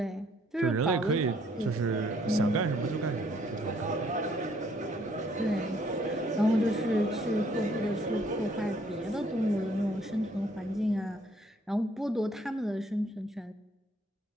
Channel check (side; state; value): both; normal; correlation 0.64